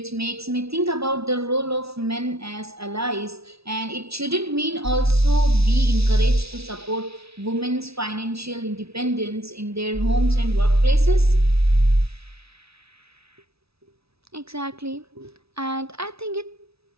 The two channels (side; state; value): left; late; 0.77 ms